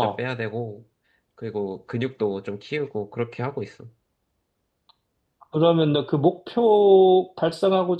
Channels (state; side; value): identical; both; correlation 1.00